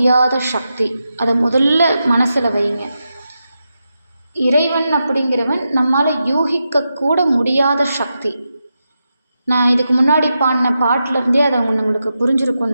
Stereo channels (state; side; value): inverted; both; correlation -0.88